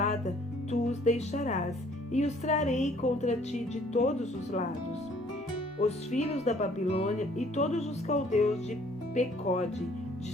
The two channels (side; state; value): both; normal; correlation 0.59